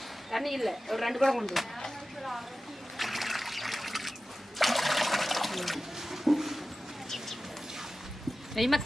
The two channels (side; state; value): both; normal; correlation 0.95